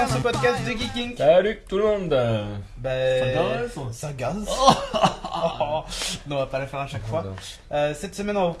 ce podcast de Geeking. Salut tout le monde. Ça gaze. Non, on va pas la faire à chaque fois. Cette semaine, on va vous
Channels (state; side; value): identical; both; correlation 1.00